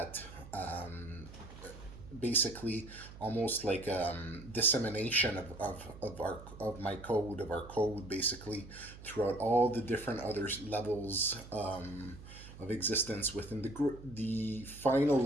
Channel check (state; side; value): noise; right; hum, 15 dB below the sound